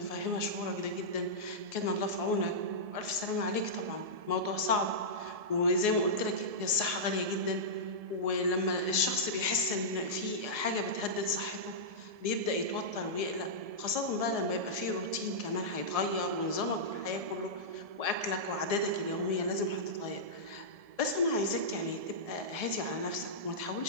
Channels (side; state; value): left; late; 1.7 ms